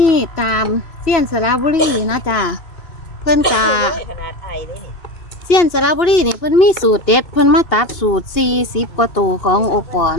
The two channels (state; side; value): late; right; 2.6 ms